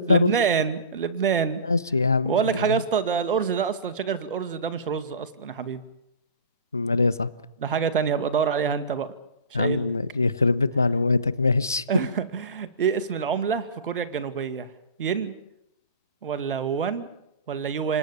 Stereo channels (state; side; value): inverted; both; correlation -0.36